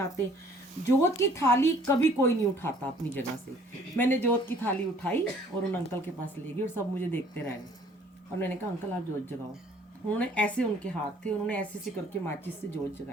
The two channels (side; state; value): both; normal; correlation 0.56